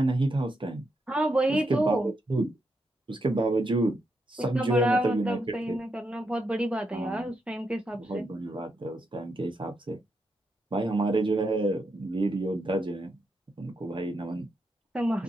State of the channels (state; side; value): normal; both; correlation 0.82